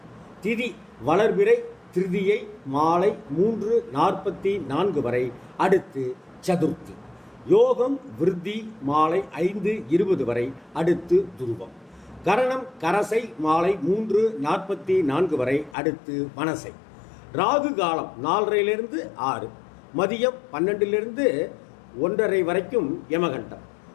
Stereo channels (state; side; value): drops out; right; at 15.8 s